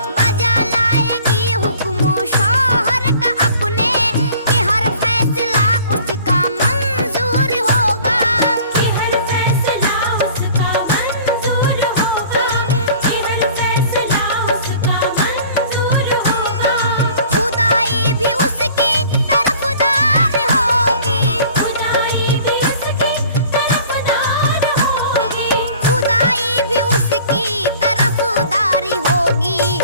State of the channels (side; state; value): both; inverted; correlation -0.49